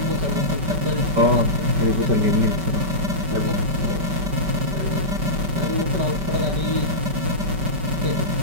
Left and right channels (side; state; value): left; late; 5.1 ms